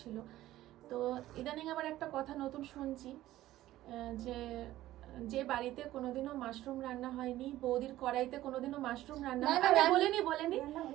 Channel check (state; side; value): quieter; left; 15.0 dB